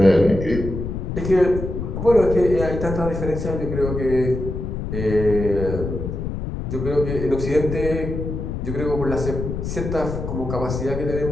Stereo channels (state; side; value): noise; left; rumble, 5 dB below the sound